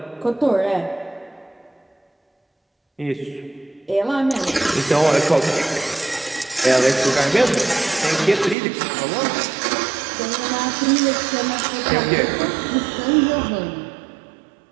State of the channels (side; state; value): left; drops out; at 8.6 s